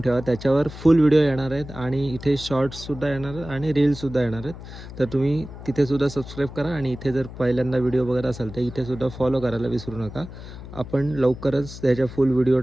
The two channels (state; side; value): noise; left; hum, 13 dB below the sound